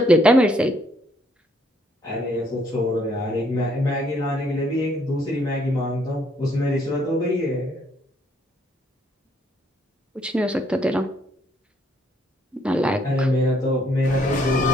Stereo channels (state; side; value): normal; both; correlation 0.68